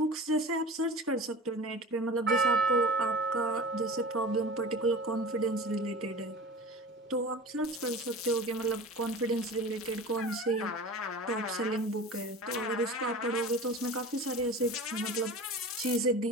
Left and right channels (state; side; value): normal; both; correlation 0.36